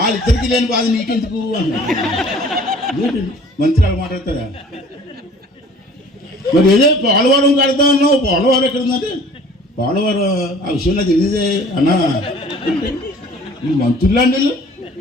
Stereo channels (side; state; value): both; normal; correlation 0.50